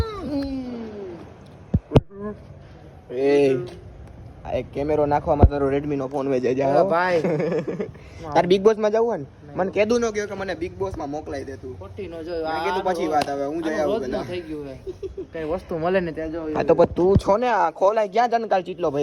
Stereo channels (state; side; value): identical; both; correlation 1.00